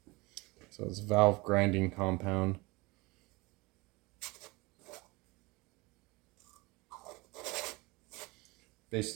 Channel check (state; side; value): quieter; left; 24.4 dB